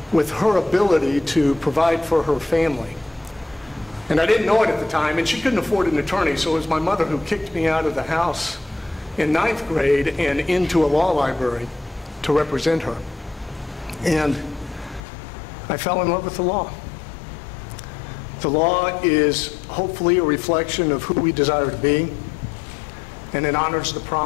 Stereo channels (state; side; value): drops out; right; at 15.0 s